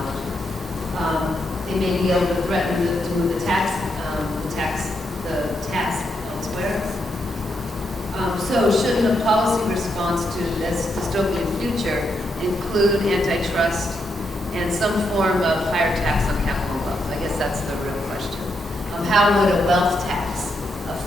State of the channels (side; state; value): both; normal; correlation 0.81